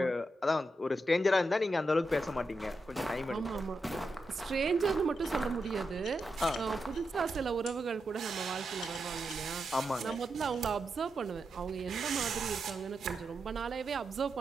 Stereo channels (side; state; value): both; normal; correlation 0.86